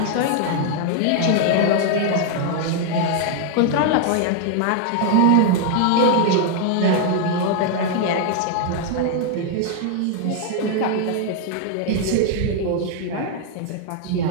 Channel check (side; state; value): both; different; correlation 0.00